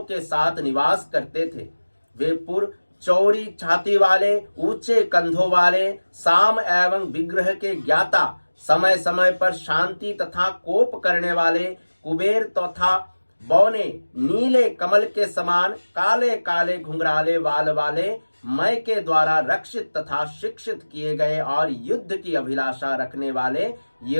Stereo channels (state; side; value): inverted; both; correlation -1.00